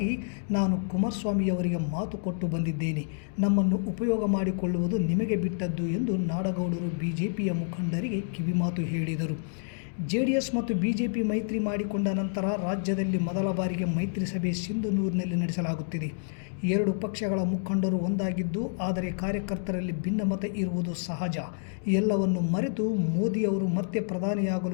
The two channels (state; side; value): silent; right; digital silence